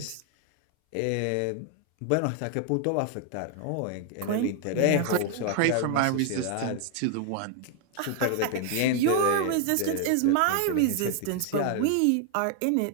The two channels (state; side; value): different; both; correlation 0.00